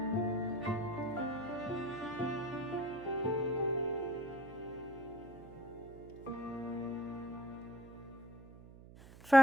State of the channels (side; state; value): right; noise; hum, 18 dB below the sound